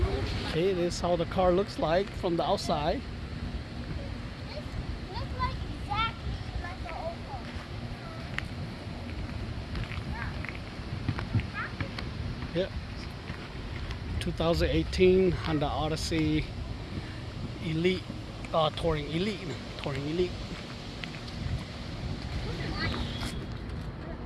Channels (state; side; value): identical; both; correlation 1.00